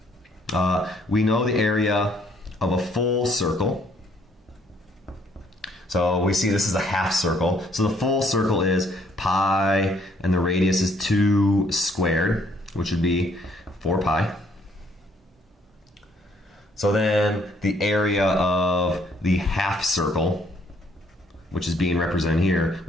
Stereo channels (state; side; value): normal; both; correlation 0.66